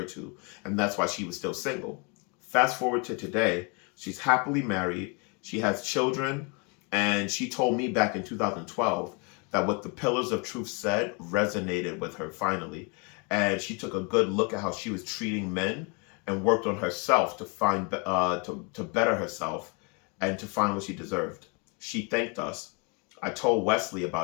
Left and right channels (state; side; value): quieter; right; 33.3 dB